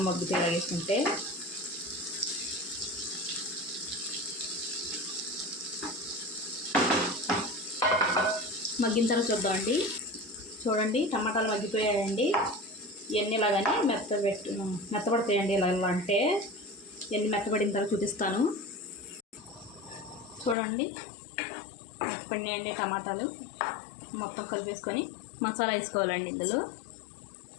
మగ్గుతాయి ఇలా వేసుకుంటే. మగ్గిన తర్వాత చూద్దామండి. చూడండి, టమాటాలు మగ్గిపోయాయండి. ఇవన్నీ ఇలాగని మెత్తపడతాయండి. ఇలా అంటే ఇవన్నీ మెత్తపడిన తర్వాత చూపిస్తాను. చూడండి, మెత్తపడినాయండి టమాటాలు. మొత్తం కలిపేసుకొని మసాలా వేసుకోవాలండి. ఇందులో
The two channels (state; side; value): drops out; right; at 20.6 s